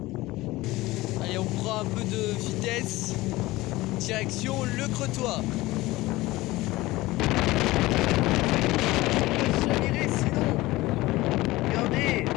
Allez, on prend un peu de vitesse. Direction le Crotoy. Chaviré sinon. Regardez.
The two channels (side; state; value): right; quieter; 19.1 dB